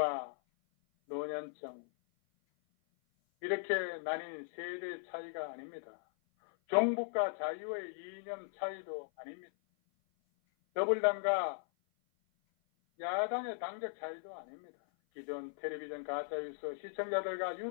노년층 이렇게 나뉜 세대 차이가 아닙니다. 종북과 자유의 이념 차이도 아닙니다. 더불당과 야당의 당적 차이도 아닙니다. 기존 텔레비전 가짜뉴스 시청자들과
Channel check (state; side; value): silent; right; 52 dB below the other